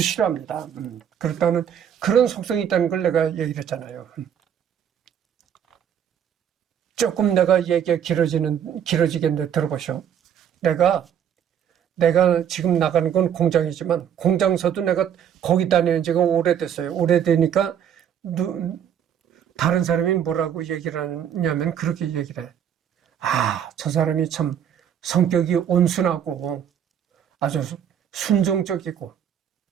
싫어합니다. 그렇다는 그런 속성이 있다는 걸 내가 얘기를 했잖아요. 조금 내가 얘기가 길어지겠는데 들어보시오. 내가 지금 나가는 건 공장이지만 공장서도 내가 거기 다니는 지가 오래됐어요. 오래되니까 다른 사람이 뭐라고 얘기를 하냐면 그렇게 얘기를 해. 아, 저 사람이 참 성격이 온순하고 아주 순종적이고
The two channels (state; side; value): quieter; left; 9.0 dB